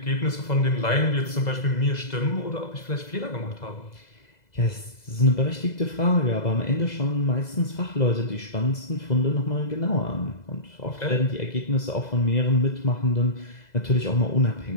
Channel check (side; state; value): right; late; 2.0 ms